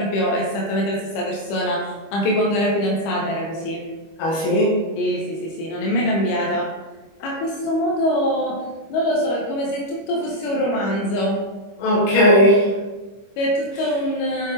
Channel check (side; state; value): right; late; 25 ms